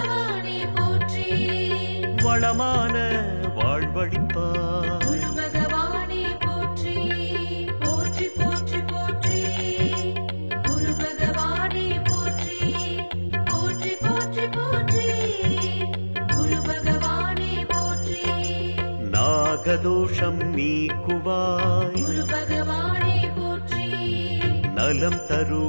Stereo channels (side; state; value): both; inverted; correlation -1.00